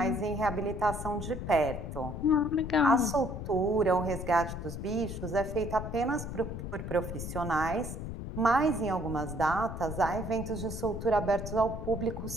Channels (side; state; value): left; noise; rumble, 7 dB below the sound